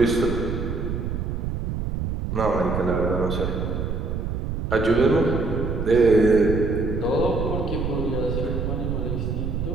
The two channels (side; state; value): right; noise; rumble, 2 dB below the sound